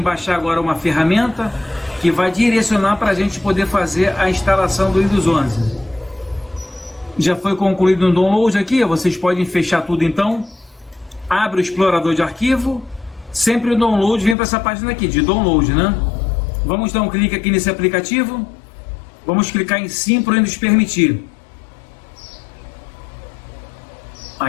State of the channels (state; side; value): drops out; right; at 14.4 s